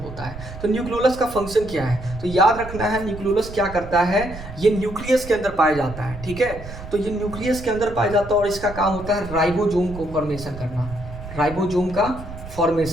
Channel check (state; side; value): noise; right; rumble, 12 dB below the sound